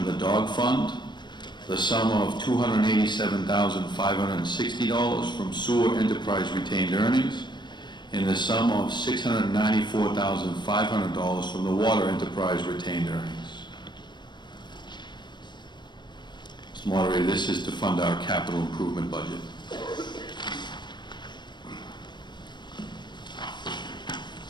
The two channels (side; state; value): right; late; 0.22 ms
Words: the Dog Fund, the sum of $287,560 from Sewer Enterprise Retained Earnings, and the sum of $694,500 from the Water Enterprise Retained Earnings. Mr. Moderator, this is to fund our capital improvement budget.